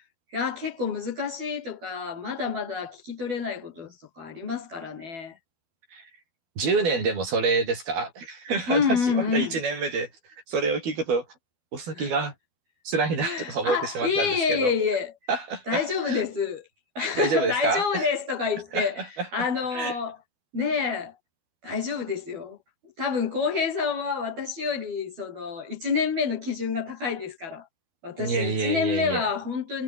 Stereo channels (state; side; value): late; left; 12 ms